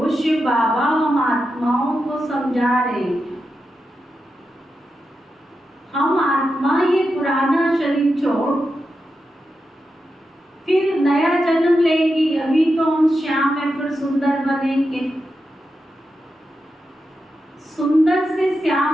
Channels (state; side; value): normal; both; correlation 0.88